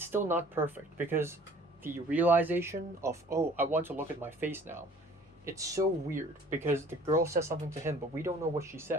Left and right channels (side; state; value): both; normal; correlation 0.51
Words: still not perfect, because the realization of, oh, I want to look at my face now, it's so weird, because the girl says something to him, but we don't know what she